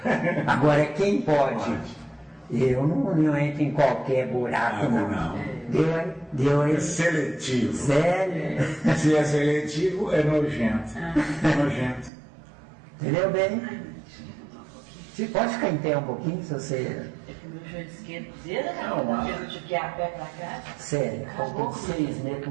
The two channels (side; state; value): left; drops out; at 12.1 s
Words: Agora, quem pode? Eu não entro em qualquer buraco, não. Deu aí? É seletivo. Sério? Se é seletivo, é nojento. Nojento. Entendeu bem? Você pode ficar em pé um pouquinho, se você... É que o meu joelho esquerdo dele, porque eu tive que ir a pé pra cá. Sério, faltam 6 meses